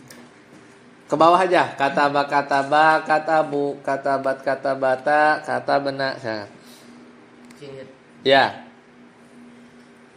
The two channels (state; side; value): identical; both; correlation 1.00